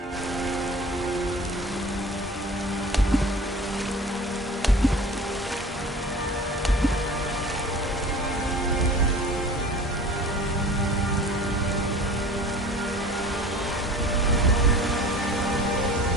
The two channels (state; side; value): normal; both; correlation 0.41